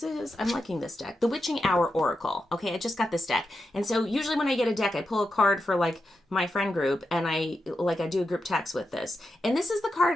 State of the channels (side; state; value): both; normal; correlation 0.88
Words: I'm liking this deck. The Witching Hour Oracle. Okay, I just got this deck. And so usually when I get a deck, I pull a card for like my friend group and I do a group text with this. And this is the